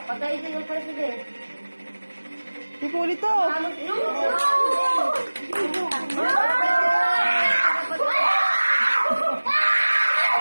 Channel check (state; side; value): inverted; both; correlation -1.00